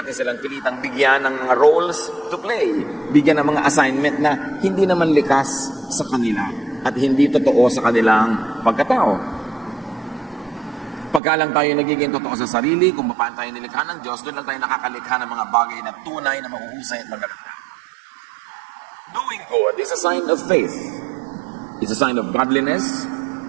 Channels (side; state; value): left; drops out; at 11.2 s